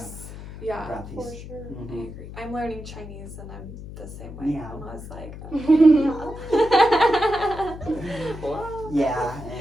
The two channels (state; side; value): noise; left; hum, 12 dB below the sound